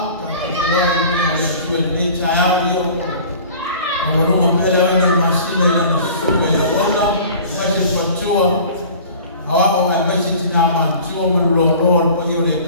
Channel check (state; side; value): inverted; both; correlation -0.44